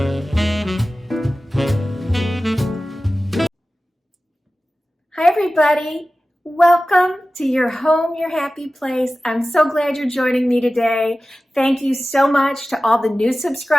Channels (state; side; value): normal; both; correlation 0.95